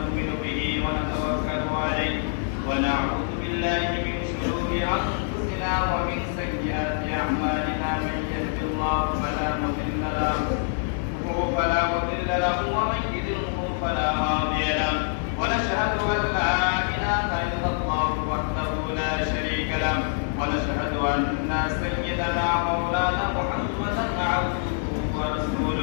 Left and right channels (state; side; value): silent; right; digital silence